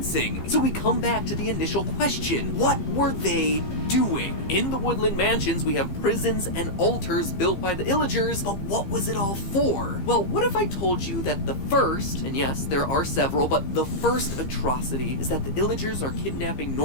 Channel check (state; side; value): late; right; 15 ms